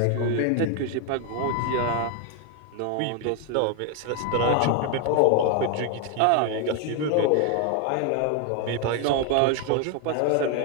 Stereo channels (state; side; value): different; both; correlation 0.01